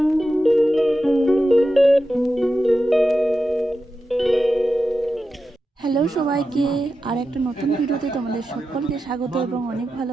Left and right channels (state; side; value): normal; both; correlation 0.90